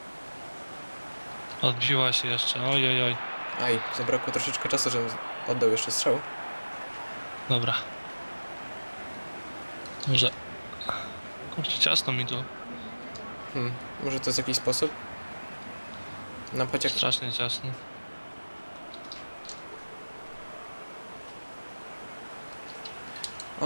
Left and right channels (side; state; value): both; inverted; correlation -1.00